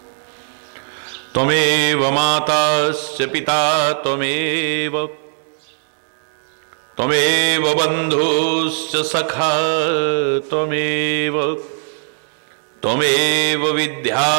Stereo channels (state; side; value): silent; left; 67 dB below the other